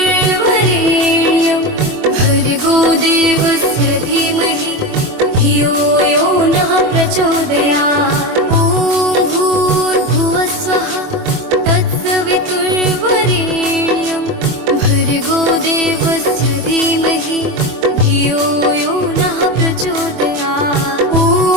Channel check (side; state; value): left; late; 24 ms